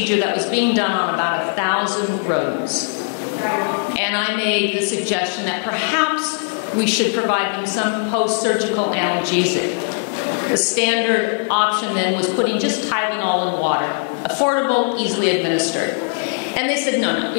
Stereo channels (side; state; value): right; silent; 55 dB below the other